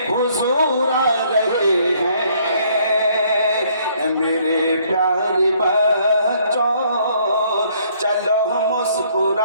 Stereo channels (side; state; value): both; inverted; correlation -0.64